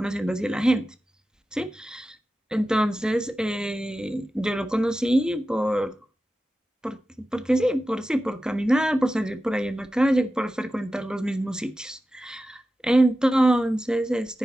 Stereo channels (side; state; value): both; normal; correlation 0.93